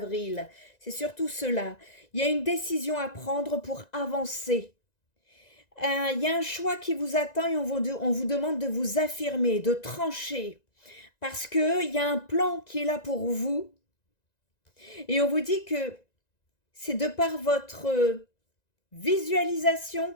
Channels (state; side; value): late; right; 1.9 ms